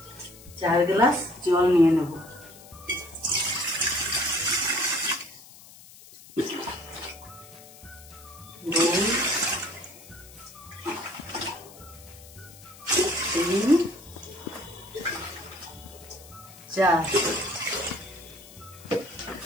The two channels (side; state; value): left; noise; hiss, 20 dB below the sound